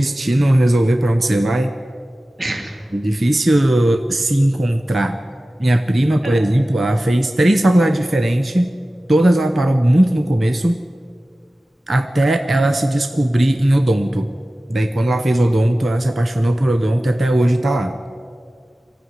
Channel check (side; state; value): both; normal; correlation 0.96